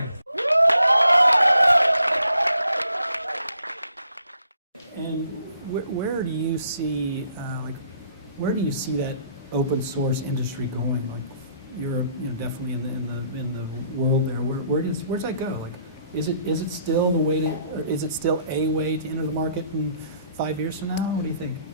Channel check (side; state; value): both; inverted; correlation -0.66